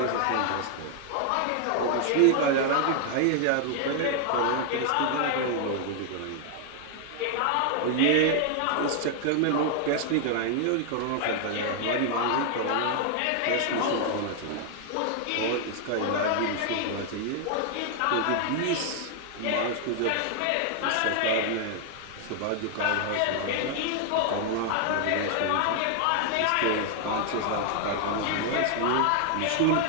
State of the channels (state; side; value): different; both; correlation 0.00